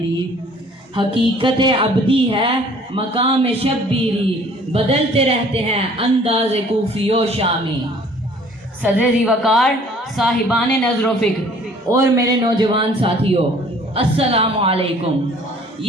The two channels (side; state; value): both; normal; correlation 0.54